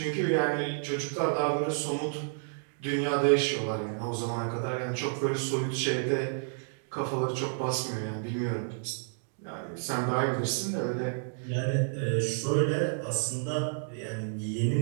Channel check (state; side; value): silent; left; digital silence